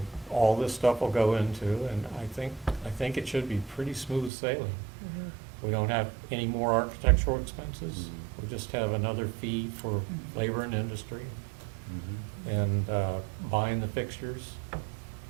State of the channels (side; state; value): left; drops out; at 4.3 s